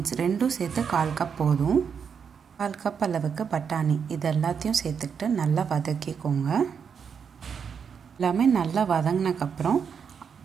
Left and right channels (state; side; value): quieter; left; 6.8 dB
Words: ரெண்டும் சேர்த்து 1/4 கப் போதும். 1/4 கப் அளவுக்கு பட்டாணி இது எல்லாத்தையும் சேர்த்துக்கிட்டு நல்லா வதக்கிக்கோங்க. எல்லாமே நல்லா வதங்கினக்கப்புறம்